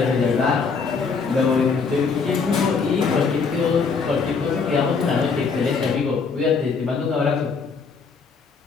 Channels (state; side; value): quieter; right; 5.1 dB